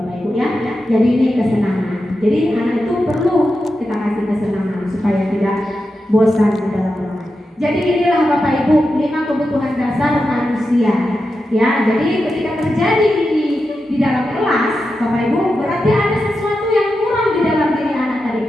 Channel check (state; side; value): normal; both; correlation 0.89